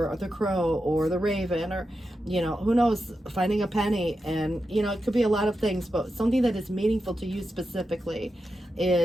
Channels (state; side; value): normal; both; correlation 0.89